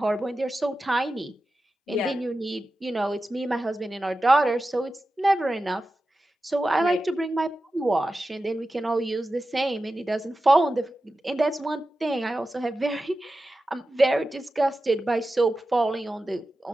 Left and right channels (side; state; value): both; normal; correlation 0.93